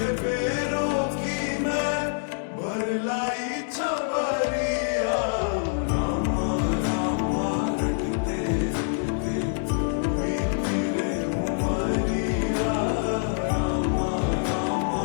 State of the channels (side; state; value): right; silent; digital silence